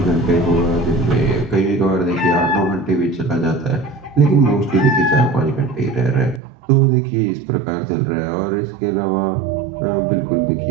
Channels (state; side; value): drops out; left; at 6.4 s